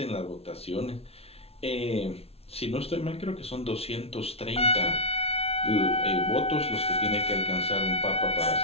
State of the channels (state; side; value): late; right; 0.30 ms